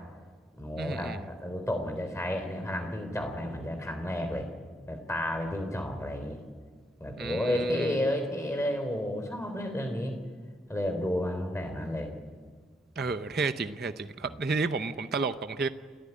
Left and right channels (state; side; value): normal; both; correlation 0.74